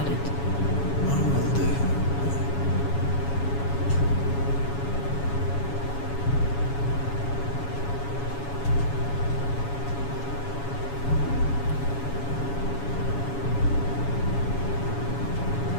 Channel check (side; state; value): right; late; 7.2 ms